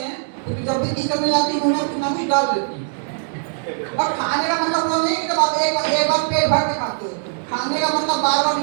हैं, क्योंकि जब भी किचन में जाती हैं उन्हें कुछ ना कुछ डाल देती हैं। और खाने का मतलब वो नहीं कि जब आप एक बार पेट भर के खाते हो। खाने का मतलब बार बार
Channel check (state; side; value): silent; left; digital silence